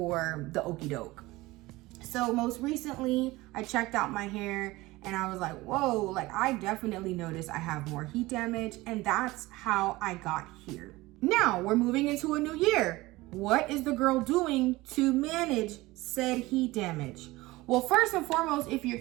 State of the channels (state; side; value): quieter; left; 20.0 dB